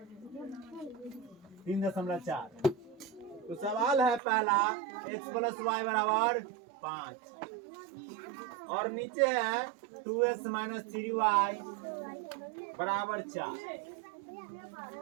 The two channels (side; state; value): left; drops out; at 4.2 s